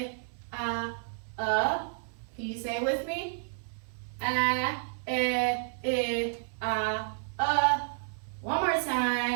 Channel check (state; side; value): silent; left; 57 dB below the other